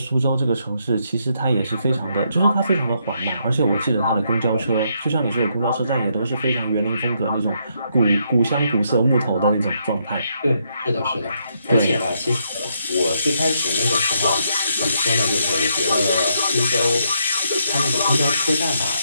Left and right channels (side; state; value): both; inverted; correlation -0.76